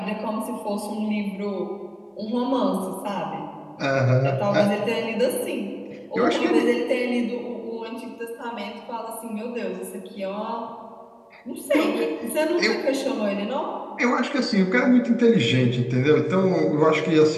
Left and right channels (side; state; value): both; identical; correlation 1.00